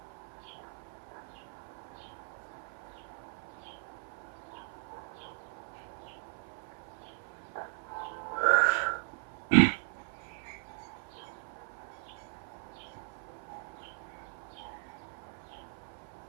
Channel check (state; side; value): silent; left; 53 dB below the other